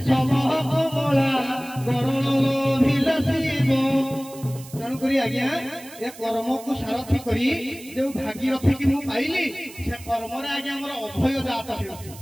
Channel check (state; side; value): noise; right; hiss, 18 dB below the sound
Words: आज्ञा ए कर्म को सारथी करी जो भागीरथी की मु पाइली से कर्म रे आज्ञा हमर अभय जात हेउछि